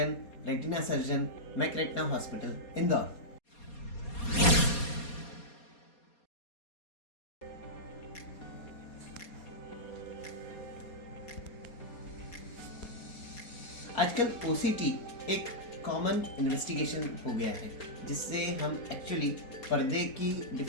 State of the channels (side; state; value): right; late; 4.2 ms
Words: retina surgeon, Mac retina hospital, Indore. आजकल OCT एक कॉमन इन्वेस्टिगेशन हो गया है, जिससे हम एक्चुअली पर्दे की